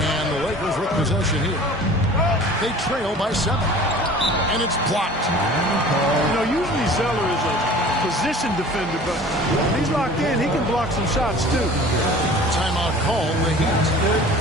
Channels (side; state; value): both; normal; correlation 0.44